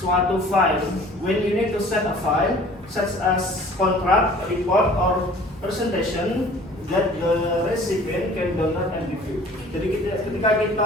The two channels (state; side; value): normal; both; correlation 0.49